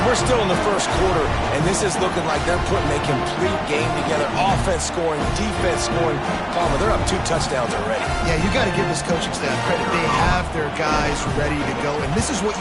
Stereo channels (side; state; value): both; identical; correlation 1.00